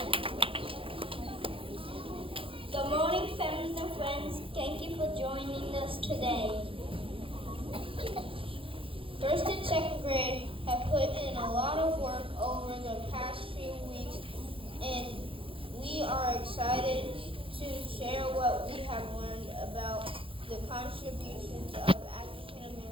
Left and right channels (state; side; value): late; left; 0.26 ms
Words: Good morning, families and friends. Thank you for joining us today. First and second grade have put in a lot of work over the past few weeks, and we are excited to share what we have learned about the contributions of African